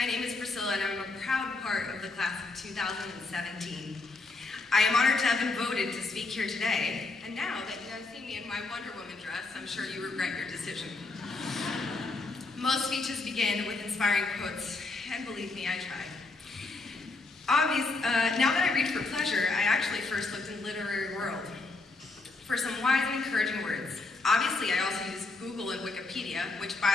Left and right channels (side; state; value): right; quieter; 3.6 dB